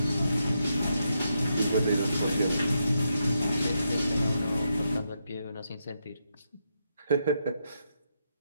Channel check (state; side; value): inverted; both; correlation -0.82